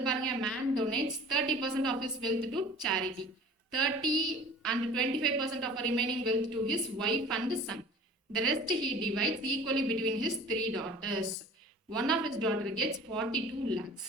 பாருங்க man donates 30% of his wealth to charity. 30 and 25% of remaining wealth to his wife and son. The rest he divides equally between his 3 daughters. One of his daughter gets 42 lakhs.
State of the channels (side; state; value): both; normal; correlation 0.44